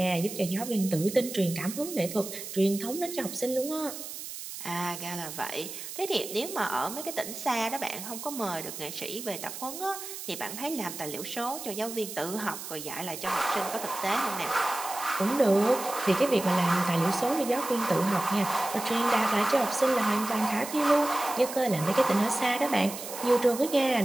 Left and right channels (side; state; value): right; noise; hiss, 9 dB below the sound